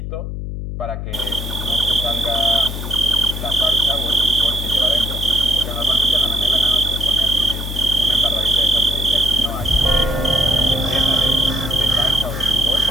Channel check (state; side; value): noise; left; hum, 6 dB below the sound